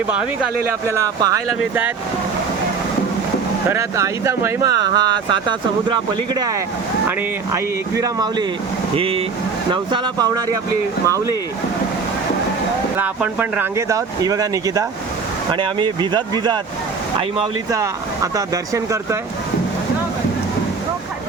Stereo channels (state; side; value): quieter; left; 5.1 dB